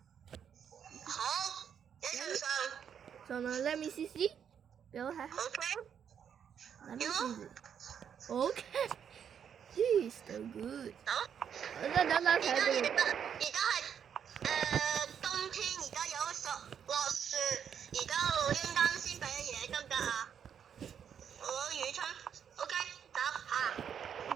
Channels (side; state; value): left; quieter; 8.1 dB